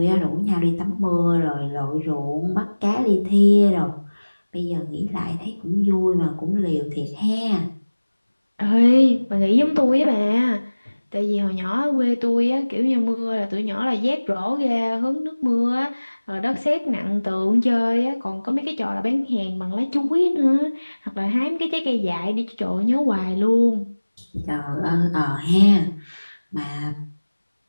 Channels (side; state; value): both; inverted; correlation -1.00